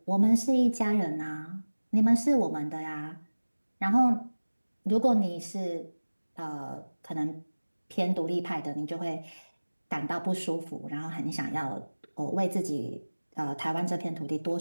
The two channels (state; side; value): inverted; both; correlation -1.00